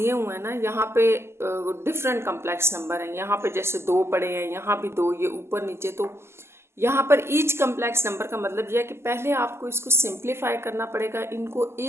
हुए हैं ना, यहाँ पे डिफरेंट कम्प्लेक्स नंबर हैं। यहाँ पे जैसे 2 पड़े हैं, यहाँ भी 2, ये ऊपर नीचे। तो यहाँ पर ईच कम्प्लेक्स नंबर का मतलब यह है कि पहले आपको इसको सिंप्लीफाई करना पड़ेगा, इनको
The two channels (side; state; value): left; late; 0.12 ms